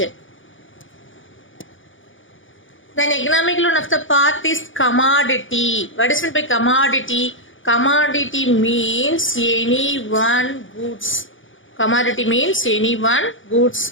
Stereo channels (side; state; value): right; late; 0.57 ms